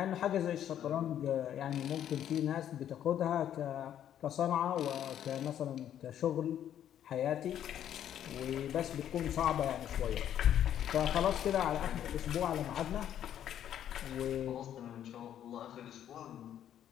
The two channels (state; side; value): quieter; right; 10.4 dB